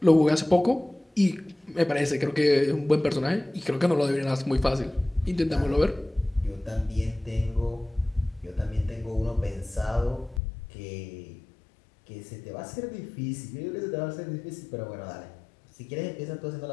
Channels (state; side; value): drops out; right; at 10.4 s